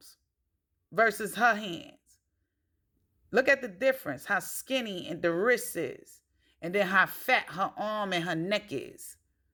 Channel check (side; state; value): both; identical; correlation 1.00